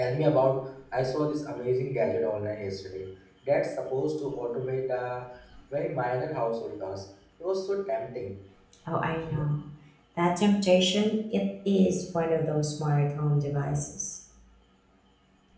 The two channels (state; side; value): identical; both; correlation 1.00